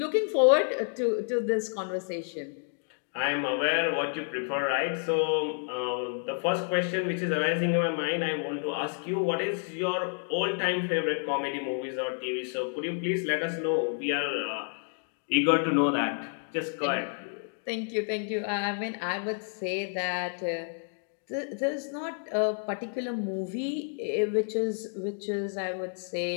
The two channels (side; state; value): right; silent; 55 dB below the other